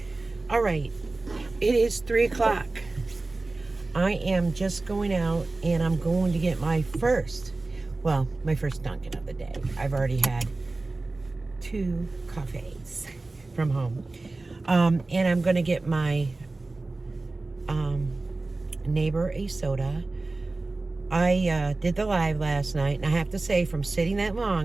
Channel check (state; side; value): quieter; left; 3.2 dB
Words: All right, it is 3 o'clock. I am just going out and I'm going to get my first Dunkin' of the day. I've already had 2 coffees from home. And I'm going to get my neighbor a soda. I did the live last night, and I have to say, from sitting that